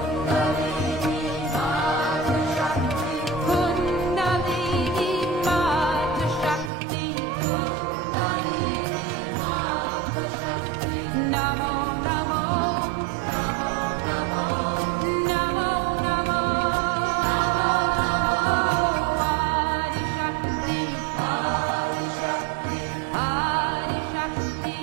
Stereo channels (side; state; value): left; drops out; at 6.7 s